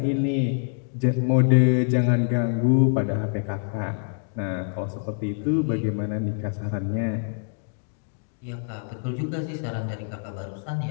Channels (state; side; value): silent; right; digital silence